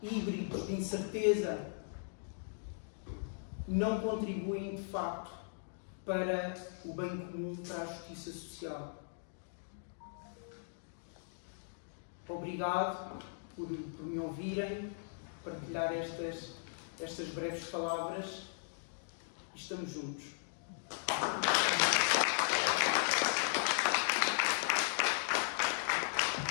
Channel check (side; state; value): right; silent; digital silence